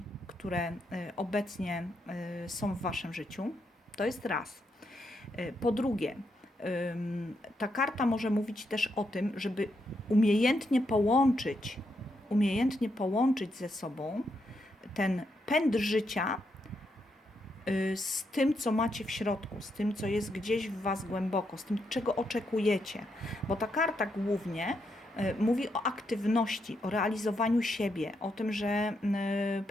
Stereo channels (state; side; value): normal; both; correlation 0.80